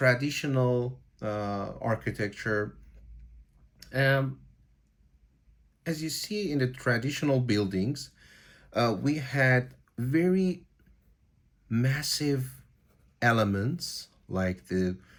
architecture. Um, as you see in the traditional buildings, we had very massive elements like the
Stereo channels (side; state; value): both; identical; correlation 1.00